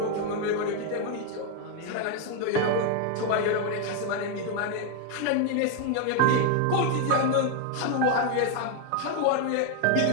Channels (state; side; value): different; both; correlation 0.01